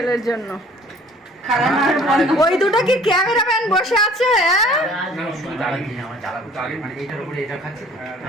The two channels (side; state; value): both; normal; correlation 0.53